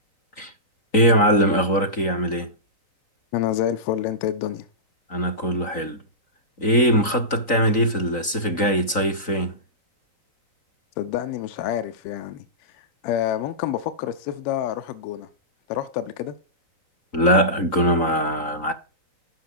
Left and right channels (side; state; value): right; late; 3.9 ms